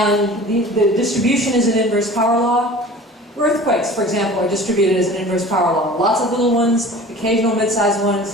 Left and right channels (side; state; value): both; normal; correlation 0.41